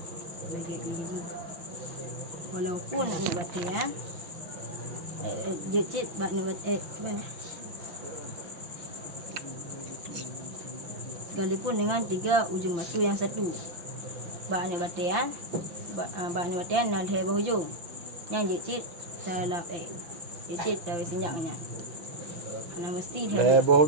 Bagi pilih. Walaupun nak batu ya. Jecit bak nak batu mana? Sekalipun dengan 3 ujung batu yang satu. Bak nak batu ya. Bak nak batu nak hai hujung. Yang jecit dalam jecit dah sinjaknya. Ana mesti hai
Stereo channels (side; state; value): left; late; 5.9 ms